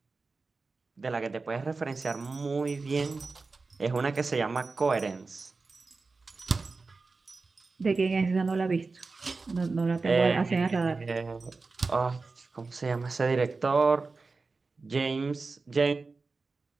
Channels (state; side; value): quieter; left; 4.0 dB